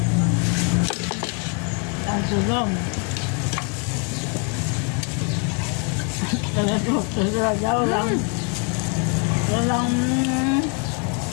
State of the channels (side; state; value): right; quieter; 37.4 dB